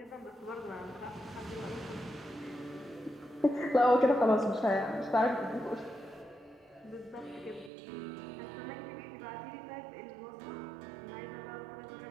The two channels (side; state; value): left; drops out; at 7.7 s